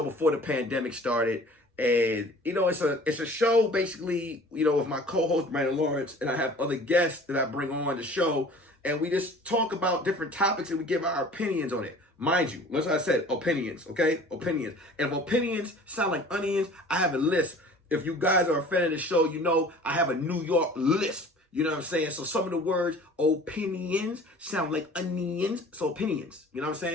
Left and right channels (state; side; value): normal; both; correlation 0.46